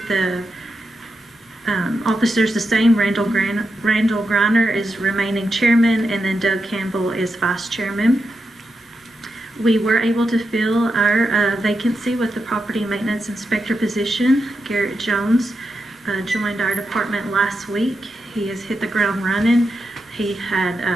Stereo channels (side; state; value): both; normal; correlation 0.86